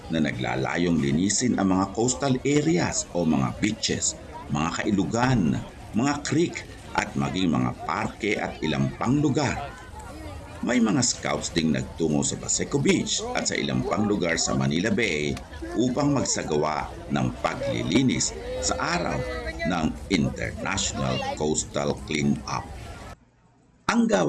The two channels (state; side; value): identical; both; correlation 1.00